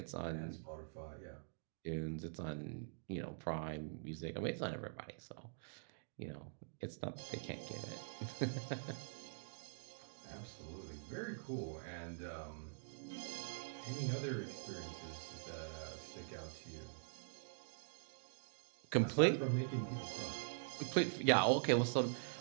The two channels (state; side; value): silent; left; digital silence